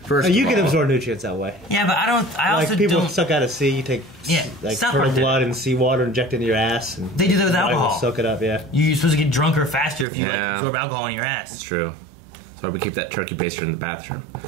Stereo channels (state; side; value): drops out; left; at 10.1 s